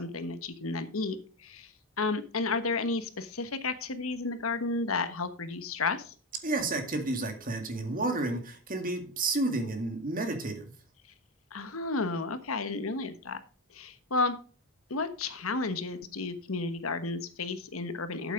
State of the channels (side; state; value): both; normal; correlation 0.15